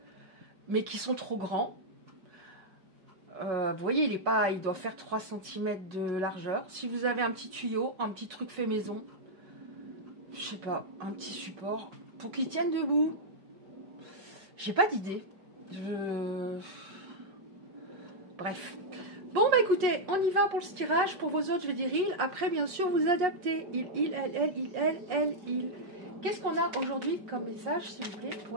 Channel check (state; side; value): late; left; 5.4 ms